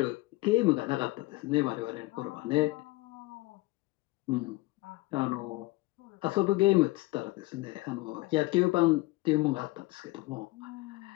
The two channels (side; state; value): right; quieter; 20.8 dB